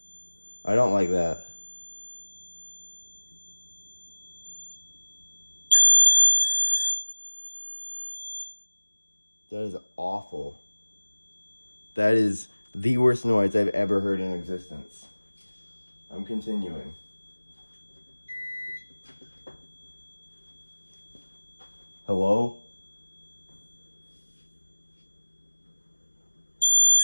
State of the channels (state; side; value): inverted; both; correlation -1.00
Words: I don't like that. That is awful. That is the worst noise I've ever heard in existence. I'm continuing. Hello?